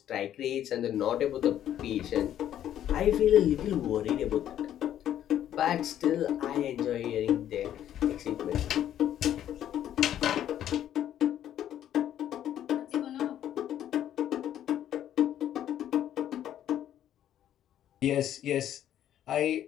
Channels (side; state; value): right; quieter; 11.1 dB